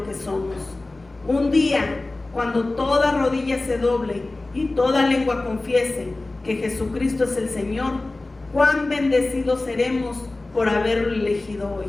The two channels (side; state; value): right; quieter; 3.0 dB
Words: que somos. Un día, cuando toda rodilla se doble y toda lengua confiese que Jesucristo es el Señor, cuán bendecidos seremos por haberlo elegido hoy.